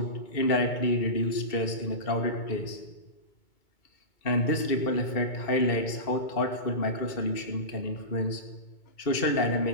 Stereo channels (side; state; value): right; late; 2.2 ms